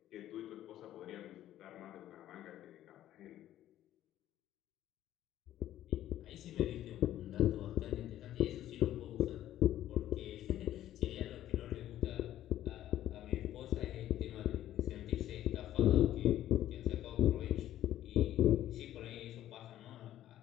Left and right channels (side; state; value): right; quieter; 12.8 dB